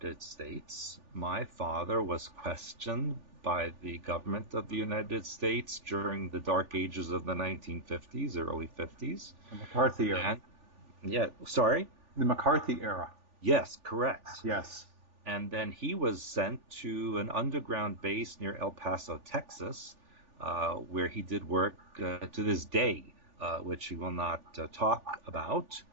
States, my father was questioned by the government of the United States during the dark ages of the 1950s, early 50s. The McCarthy era. The McCarthy era. Yes, correct. Yes. And then he was sent to an underground base near El Paso, Texas, where he did work to this day, which he will not talk about.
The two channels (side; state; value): left; late; 3.4 ms